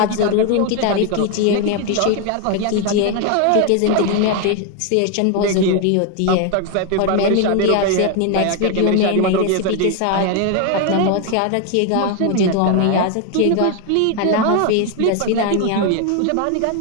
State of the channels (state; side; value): different; both; correlation 0.01